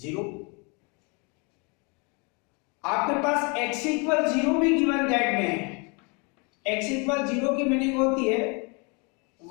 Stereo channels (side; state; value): right; quieter; 32.1 dB